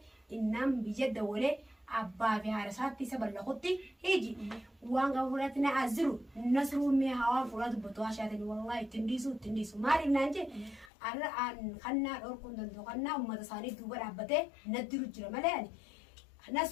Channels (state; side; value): drops out; right; at 10.9 s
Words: innaan biyya dawalee abbaa fi haadha isaatti isa ballaqutti hiji waan gaba fuudhatti na aziru nasruun mee hawaan fuudhaa dubbatu haashaatanii wallahi ittiin dhiisu maaliif naan jee arra kannaa dhorkuun danda'u kannaa uummata isaanii duuba dhaabbatee naddiru jira malee ani